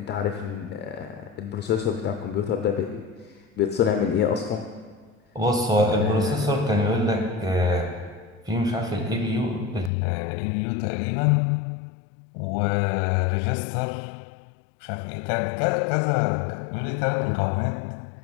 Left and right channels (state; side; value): drops out; right; at 9.9 s